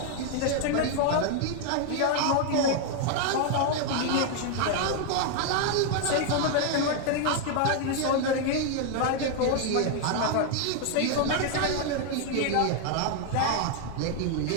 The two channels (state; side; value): different; both; correlation 0.00